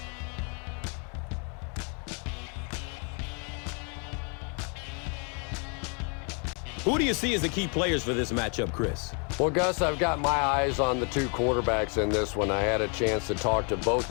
Who do you see as the key players for this matchup, Chris? Well, Gus, I've got my eyes on the two quarterbacks in this one. I had a chance to talk to both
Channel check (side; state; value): right; quieter; 37.7 dB